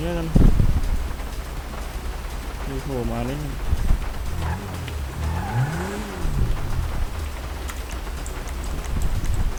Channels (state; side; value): identical; both; correlation 1.00